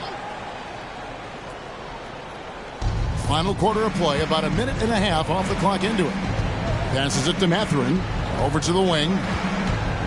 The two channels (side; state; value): both; identical; correlation 1.00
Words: Final quarter of play, about a minute and a half off the clock into it. Passes it to Mathurin. Over to the wing.